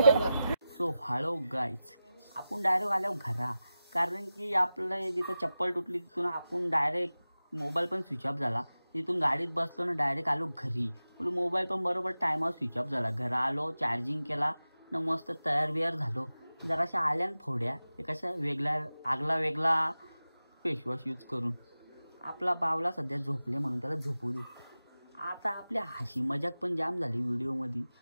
सो हॅलो गाईज, आपण डायरेक्ट आलो घरा. कारण की आपलं जिथं चप्पल तुटली तिथून आपण डायरेक्ट मोबाईल पण स्विच ऑफ झाला. तिथून गाडीत बसलो ना डायरेक्ट आलो घरी. मोबाईल पण बरोबर टायमावर स्विच ऑफ झाला. घरा आलो, चार्जिंग केला ना, मस्त तयार बियार झालो. जराशा आल्या फोड्या एकाशा वेगळा फेसवॉश यूज करून. आपला बावला सध्या झोपले म्हणून त्याला झोपू दे. आता आपल्या हशी मजाक पण जाम झाली व्हिडिओमध्ये.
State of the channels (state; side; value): inverted; both; correlation -0.94